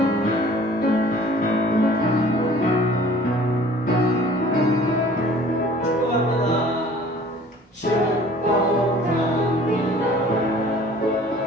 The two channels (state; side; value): normal; both; correlation 0.50